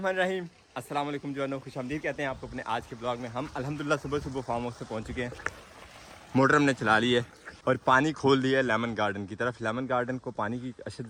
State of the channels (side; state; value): both; identical; correlation 1.00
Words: अस्सलाम वालेकुम जवानों, खुशामदीद कहते हैं आपको अपने आज के ब्लॉग में। हम अल्हम्दुलिल्लाह सुबह फार्म हाउस से पहुंच चुके हैं। मोटर हमने चला ली है और पानी खोल दिया है लेमन गार्डन की तरफ। लेमन गार्डन को पानी की अशद